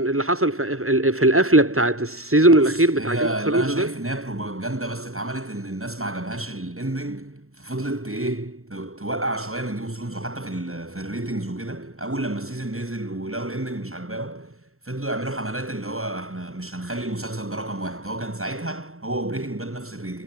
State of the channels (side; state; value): left; late; 0.63 ms